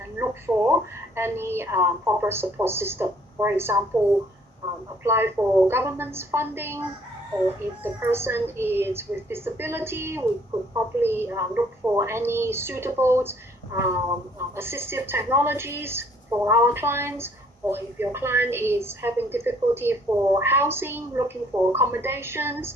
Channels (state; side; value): normal; both; correlation 0.62